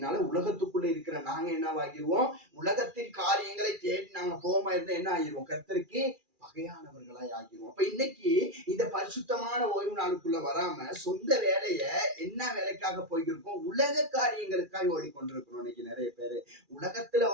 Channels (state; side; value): late; left; 2.4 ms